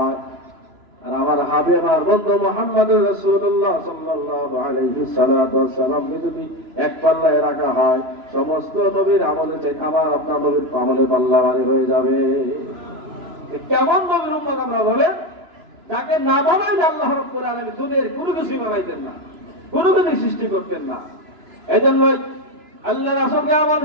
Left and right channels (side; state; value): left; late; 3.0 ms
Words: আর আমার হাবিব আর বন্ধু মুহাম্মদুর রাসূলুল্লাহ সাল্লাল্লাহু আলাইহি সাল্লাম যদি এক পাল্লায় রাখা হয়, সমস্ত নবীর আমলে চাই আমার আপনার নবীর আমলে পাল্লা ভারী হয়ে যাবে। কেমন নবীর উম্মত আমরা বলে, যাকে না বানাইলে আল্লাহ রাব্বুল আলামিন দুনিয়ার কোনো কিছু বানাইতেন না, কোনো কিছু সৃষ্টি করতেন না। এজন্য আল্লাহ রাসূলকে এমন